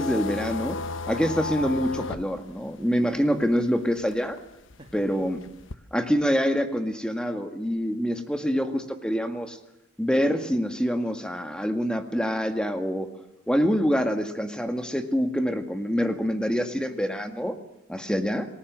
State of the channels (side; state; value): both; normal; correlation 0.88